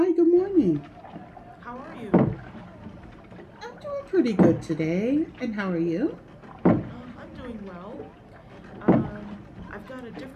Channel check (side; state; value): both; identical; correlation 1.00